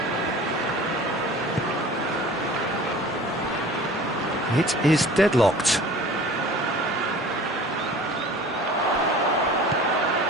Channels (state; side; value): normal; both; correlation 0.43